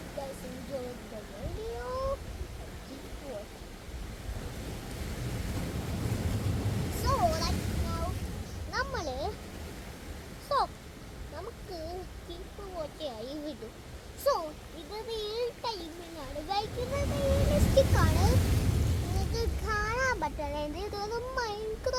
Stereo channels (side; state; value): both; identical; correlation 1.00